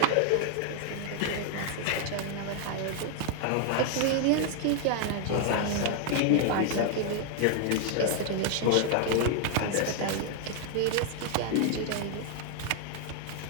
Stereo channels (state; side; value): different; both; correlation 0.00